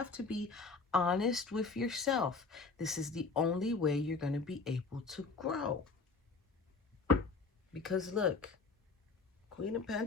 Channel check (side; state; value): right; quieter; 4.3 dB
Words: to be honest with yourself. This is the only way you're going to be able to grow. Because look, Queen of